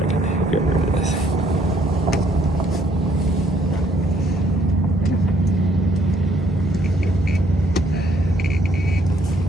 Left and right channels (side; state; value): both; normal; correlation 0.66